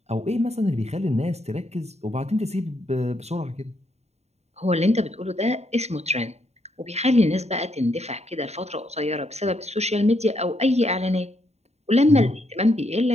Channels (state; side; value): late; left; 0.31 ms